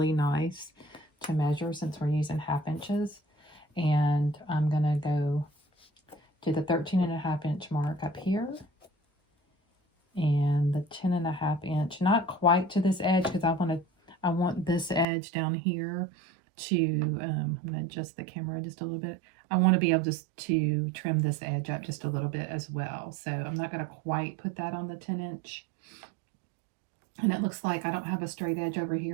nice to measure since we're using 1/2 inches. And I'm going to go to the 13.5-inch mark up here, and the 10.5-inch, not quite to this edge, because I want this edge down here to, I'm going to adjust the camera just a little bit. I want to be able to trim this edge up just a little bit as well. So I'm not going to quite put that on the 10-inch. And it looks like I don't have a straight edge over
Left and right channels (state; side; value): drops out; left; at 15.1 s